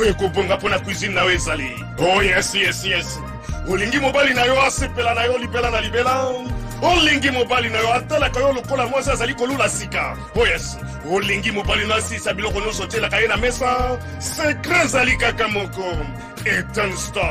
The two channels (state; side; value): identical; both; correlation 1.00